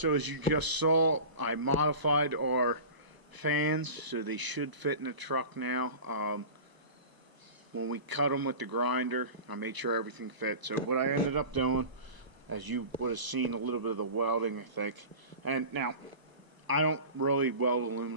as you just saw, I modified our fans so they should fit in the truck now. When we cut them with the grinder, I made sure everything fit. So what I ended up doing, as you would have seen a little bit of the welding, I think. And now, I don't really weld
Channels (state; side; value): late; left; 1.0 ms